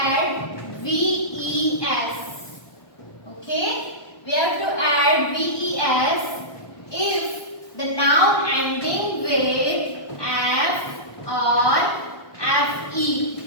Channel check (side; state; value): right; late; 1.2 ms